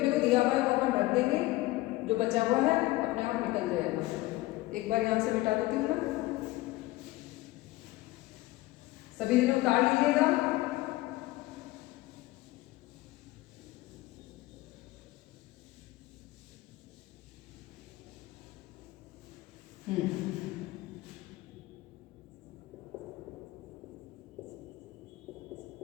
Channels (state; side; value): quieter; right; 18.8 dB